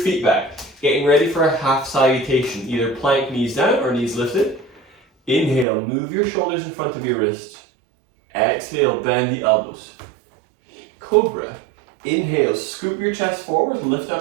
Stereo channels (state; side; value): drops out; left; at 5.7 s